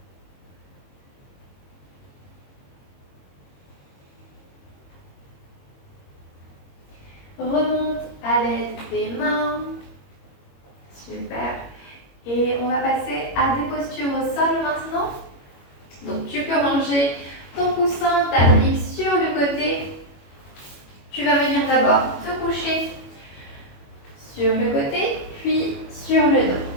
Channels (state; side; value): late; right; 21 ms